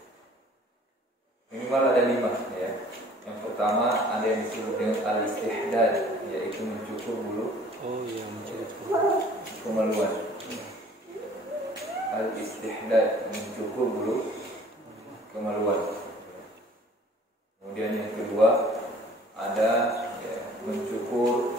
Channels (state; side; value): normal; both; correlation 0.52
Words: Minimal ada 5 ya. Yang pertama ada yang disebut dengan al-istihdad, yaitu mencukur bulu. Oh iya, mencukur kemaluan. Al-istihdad, mencukur bulu kemaluan. Kemudian yang kedua ada mencukur